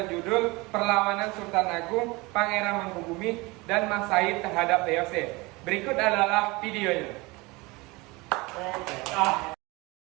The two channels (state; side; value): quieter; left; 24.1 dB